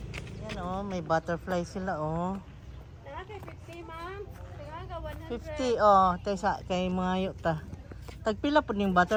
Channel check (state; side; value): identical; both; correlation 1.00